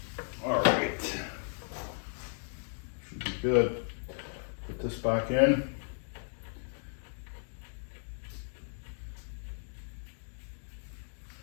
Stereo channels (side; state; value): right; silent; digital silence